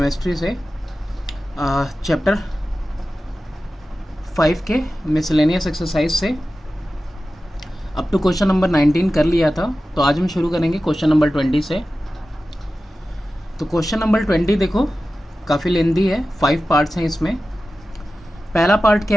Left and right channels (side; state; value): both; normal; correlation 0.94